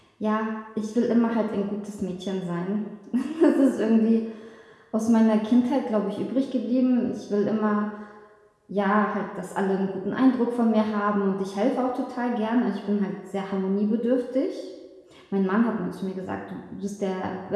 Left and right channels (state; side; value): identical; both; correlation 1.00